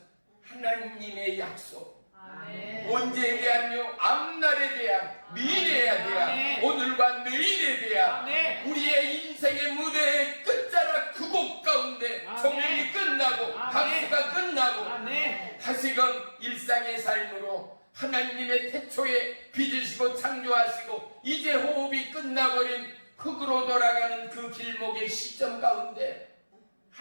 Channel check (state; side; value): inverted; both; correlation -1.00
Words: 하나님의 약속. 아멘. 언제에 대한요? 앞날에 대한, 미래에 대한, 아멘. 오늘과 내일에 대한 아멘. 우리의 인생의 무대의 끝자락 그 곡 가운데 아멘. 종일이 끝나고 아멘. 박수가 끝나고 아멘. 다시금 일상의 삶으로 하나님의 태초에 빚으시고 창조하시고 이제 호흡이 끝나버린 흙으로 돌아가는 그 길목의 시점 가운데